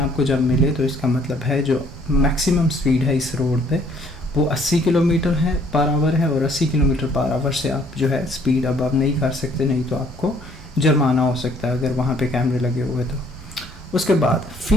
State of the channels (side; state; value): both; normal; correlation 0.62